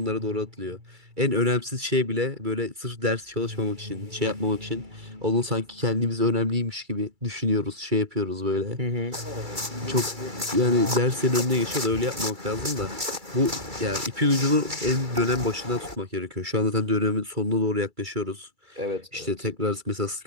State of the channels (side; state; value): left; late; 2.3 ms